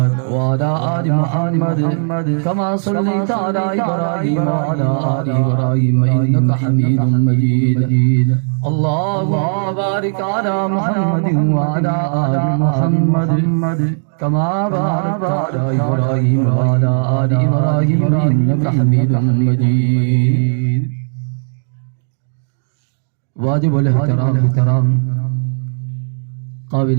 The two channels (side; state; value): left; silent; digital silence